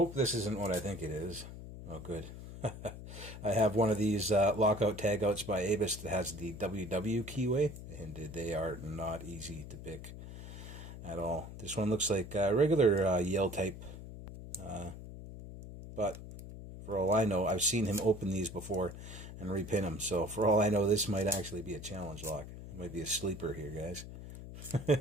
this isn't what I think it is. Oh, good. I have one of these lockout tagouts by Avis that has the WW keyway, and they are not easy to pick at all. This one looks like a regular Yale type, but for all I know, I've seen him open these before and repin them. So for all I know, this might actually be a challenge lock. It might be a sleeper here, guys.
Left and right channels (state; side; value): noise; left; hum, 12 dB below the sound